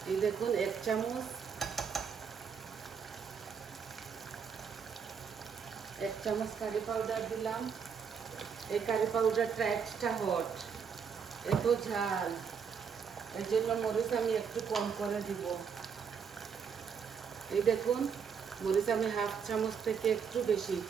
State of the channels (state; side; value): quieter; left; 6.7 dB